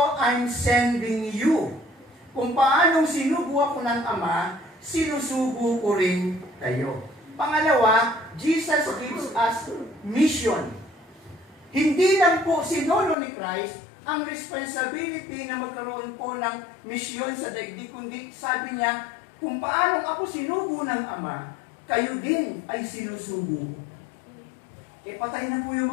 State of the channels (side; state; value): right; drops out; at 13.2 s